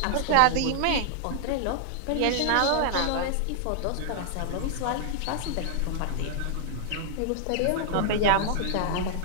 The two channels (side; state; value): both; different; correlation -0.01